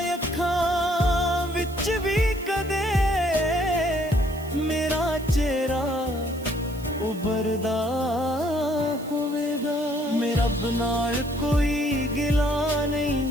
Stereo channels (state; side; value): noise; right; hiss, 20 dB below the sound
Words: ਅੱਖਾਂ ਵਿੱਚ ਵੀ ਕਦੇ ਮੇਰਾ ਚਿਹਰਾ ਉਭਰਦਾ ਹੋਵੇਗਾ। ਮੈਂ ਰੱਬ ਨਾਲ ਕੋਈ ਗਿਲਾ ਨਹੀਂ